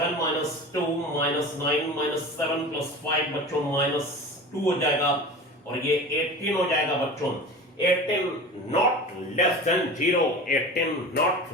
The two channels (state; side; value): normal; both; correlation 0.35